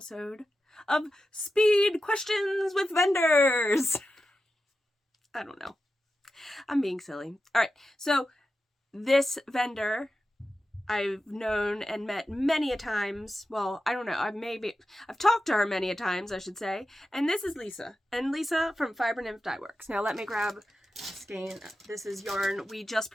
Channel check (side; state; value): both; normal; correlation 0.91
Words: of Speed Questions with Vendors? I don't know. I'm being silly. All right. So this vendor I've known and met many a times. Well, I don't know. I've talked to her many a times, I should say. And this is Lisa. And Lisa from Fibernymph Dye Works. Now let me grab a skein. This is yarn we just